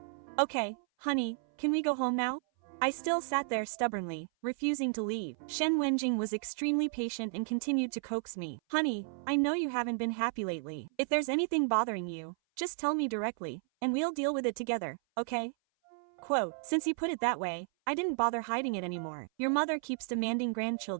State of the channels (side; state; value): left; silent; 56 dB below the other